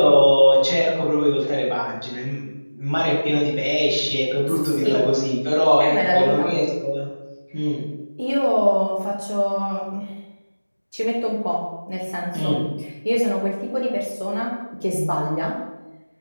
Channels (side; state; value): both; inverted; correlation -1.00